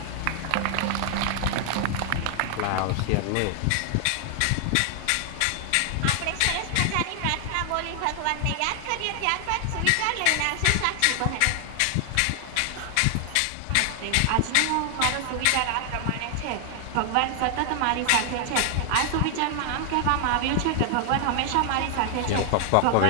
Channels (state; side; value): different; both; correlation 0.00